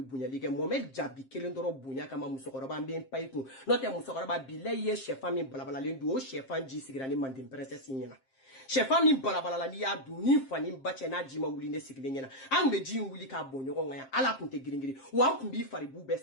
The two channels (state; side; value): late; right; 7.6 ms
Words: bonyali kɛ Mohamed Jabi kelen dɔrɔn bonya kama musokɔrɔba n bɛ n pa i kun n'o tɛ musokɔrɔba bilayi ye sɛfan min balabalalen don o sɛfan ji sigira ni mande princesse ɲɛna Chefan min balabala ni ya du ni fani bache na jima wuli ne sigile nyena an be ji wuli ka bonyo nga ala kunte giringiri wa kun bi fari bu be